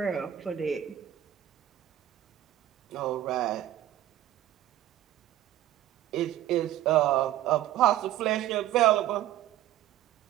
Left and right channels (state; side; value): quieter; left; 12.9 dB